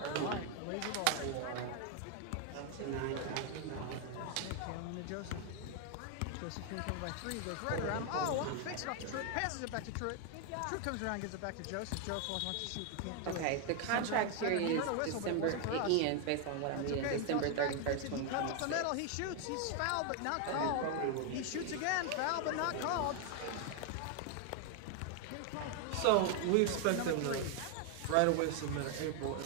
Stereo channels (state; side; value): different; both; correlation 0.01